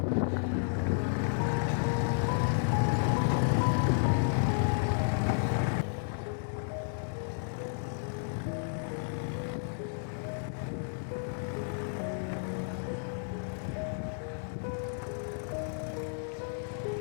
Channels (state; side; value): silent; right; digital silence